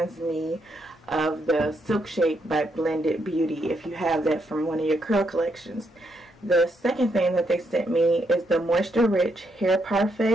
me of the Silk Shake by Blended Beauty, if you have that from one of your curl collections. The second thing that they sent me is the Moisture Rich Hair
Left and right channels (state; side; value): normal; both; correlation 0.77